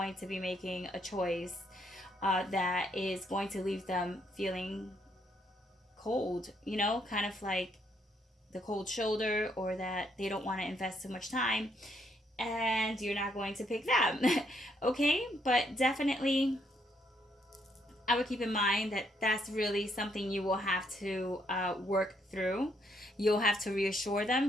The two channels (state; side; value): normal; both; correlation 0.73